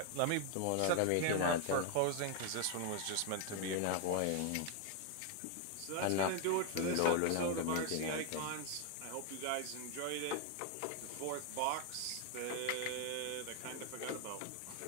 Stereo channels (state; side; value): different; both; correlation 0.01